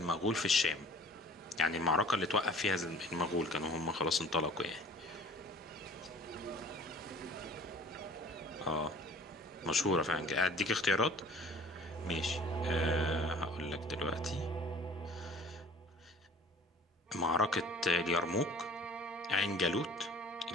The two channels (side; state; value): both; normal; correlation 0.48